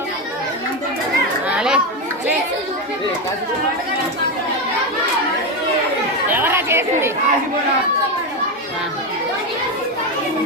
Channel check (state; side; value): normal; both; correlation 0.12